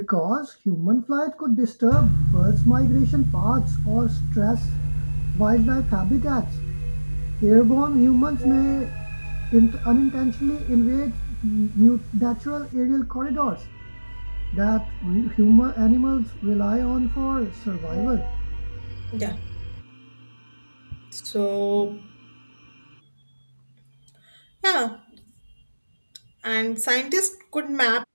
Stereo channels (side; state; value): both; inverted; correlation -1.00